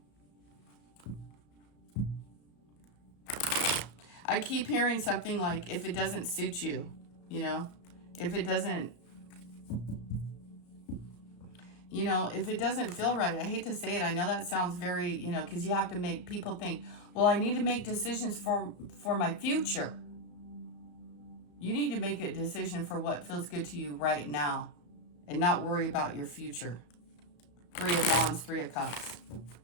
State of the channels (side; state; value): right; late; 34 ms